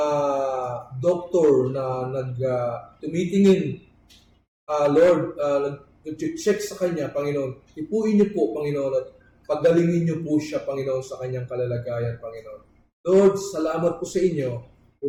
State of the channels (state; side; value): identical; both; correlation 1.00